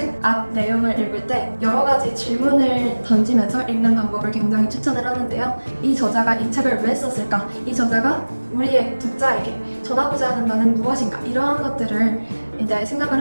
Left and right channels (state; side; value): inverted; both; correlation -1.00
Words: 앞 내용을 읽을 때 여러 가지 질문을 던지면서 읽는 방법을 굉장히 추천을 하는데요. 이 저자가 이 책을 왜 썼을까? 이 저자가 우리의 독자에게 전하고자 하는 바는 무엇인가? 이러한 것들을 이제 생각을